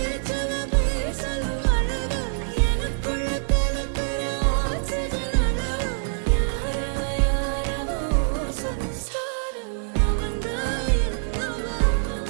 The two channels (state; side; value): silent; left; 62 dB below the other